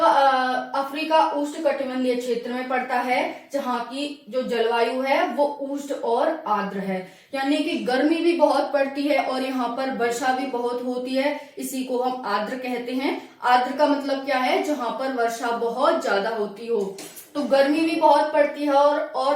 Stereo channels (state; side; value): identical; both; correlation 1.00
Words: अफ्रीका उष्णकटिबंधीय क्षेत्र में पड़ता है, जहाँ की जो जलवायु है वो उष्ण और आर्द्र है, यानी कि गर्मी भी बहुत पड़ती है और यहाँ पर वर्षा भी बहुत होती है। इसी को हम आर्द्र कहते हैं। आर्द्र का मतलब क्या है? जहाँ पर वर्षा बहुत ज्यादा होती हो। तो गर्मी भी बहुत पड़ती है